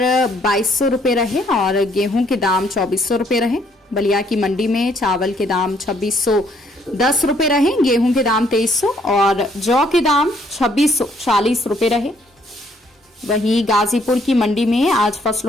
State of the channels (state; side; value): normal; both; correlation 0.67